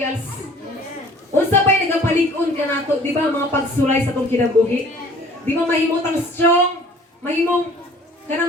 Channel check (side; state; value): both; normal; correlation 0.52